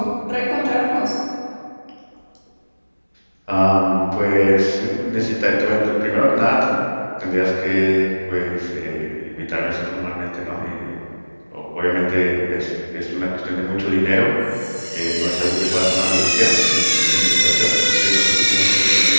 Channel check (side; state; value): both; inverted; correlation -1.00